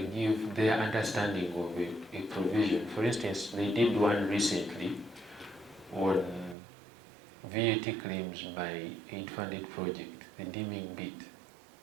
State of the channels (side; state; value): left; drops out; at 6.6 s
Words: give their understanding of a provision. For instance, they did one recently on VAT claims by aid-funded project, the deeming bit.